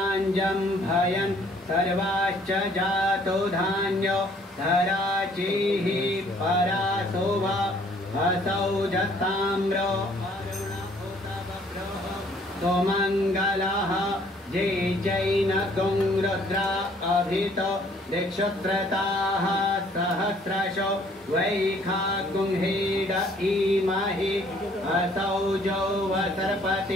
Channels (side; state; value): both; normal; correlation 0.60